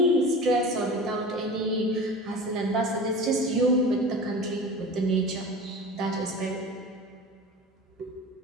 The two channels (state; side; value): normal; both; correlation 0.35